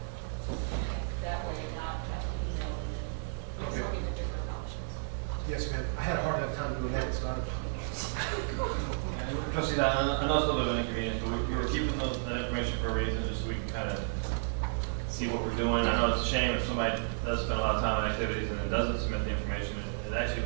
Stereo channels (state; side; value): silent; left; digital silence